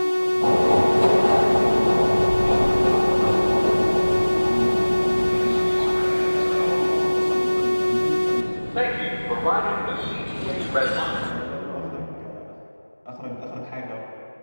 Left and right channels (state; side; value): inverted; both; correlation -1.00